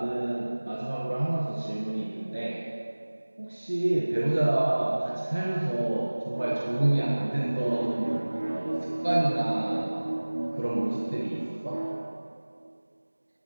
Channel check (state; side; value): inverted; both; correlation -1.00